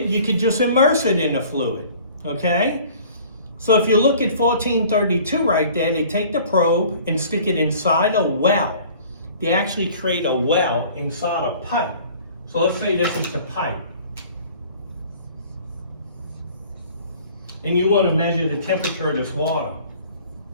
you could just immerse it in the fluid, okay? So if you look at 1432 right there, they take the probe and stick it inside a well. They actually create a well inside a pipe. So let's say this is the pipe. And you want to measure the temperature of this water.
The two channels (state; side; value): inverted; both; correlation -0.49